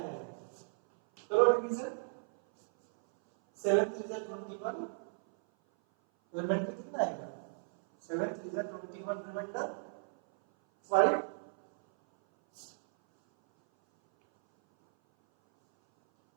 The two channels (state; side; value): silent; left; 55 dB below the other